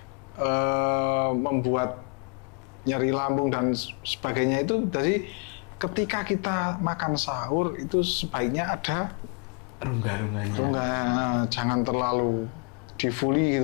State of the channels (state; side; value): quieter; right; 38.4 dB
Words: membuat nyeri lambung dan sebagainya. Itu dari ketika kita makan sahur itu sebaiknya ada rongga-rongganya. Jangan terlalu di-fully